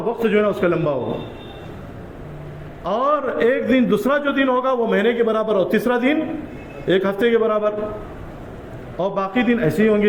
جو ہے نا اس کا لمبا ہوگا. اور ایک دن دوسرا جو دن ہوگا وہ مہینے کے برابر، اور تیسرا دن ایک ہفتے کے برابر، اور باقی دن ایسے ہی ہوں گے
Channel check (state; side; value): identical; both; correlation 1.00